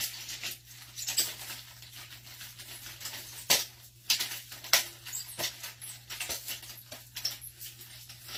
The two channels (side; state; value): both; identical; correlation 1.00